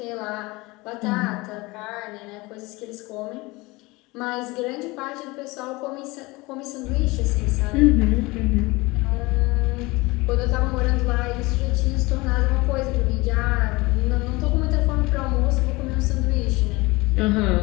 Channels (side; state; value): right; quieter; 23.1 dB